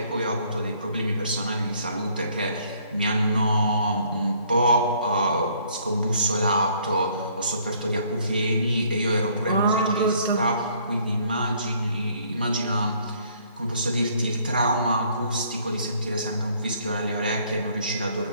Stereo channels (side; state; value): both; inverted; correlation -0.63